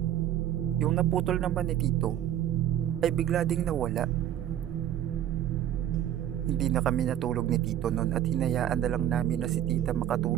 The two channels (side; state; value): left; quieter; 11.4 dB